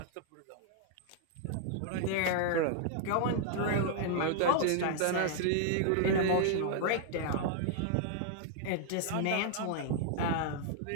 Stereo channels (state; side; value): different; both; correlation 0.00